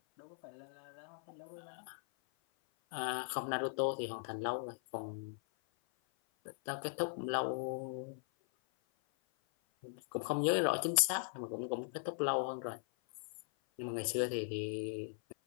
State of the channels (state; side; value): silent; right; 51 dB below the other